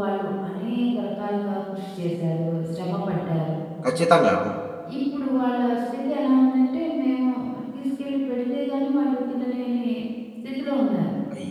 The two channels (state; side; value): identical; both; correlation 1.00